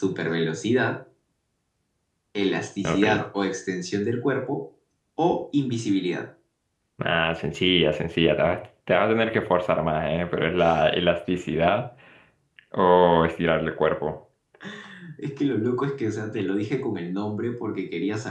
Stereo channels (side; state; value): both; identical; correlation 1.00